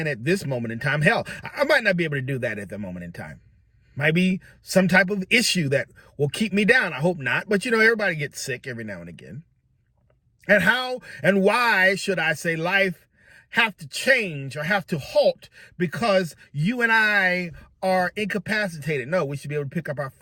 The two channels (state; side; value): identical; both; correlation 1.00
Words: at this moment in time. Hell, I might not be able to do that at the moment in time. Might be some type of issue that will keep me down. I hope not. But, everybody gets sick every now and again. And how and why should I say life have to change or have to halt because you and I are incapacitated? No, we should be able to pick up our